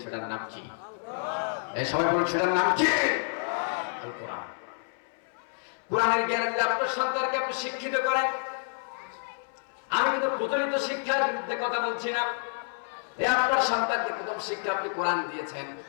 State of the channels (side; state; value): right; silent; 59 dB below the other